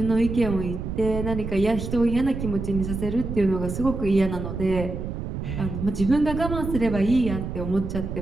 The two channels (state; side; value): noise; right; rumble, 5 dB below the sound